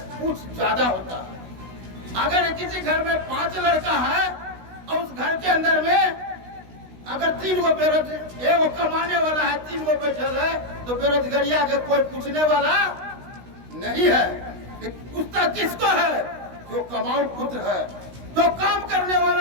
ज्यादा होता है। अगर किसी घर में 5 लड़का है और उस घर के अंदर में अगर 3 गो बेरोजगार, एगो कमाने वाला है, 3 गो बैठल है, तो बेरोजगारी आगे कोई पूछने वाला नहीं है। पूछता किसको है? जो कमाऊ पुत्र है, जो काम करने वाला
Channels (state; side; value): late; left; 16 ms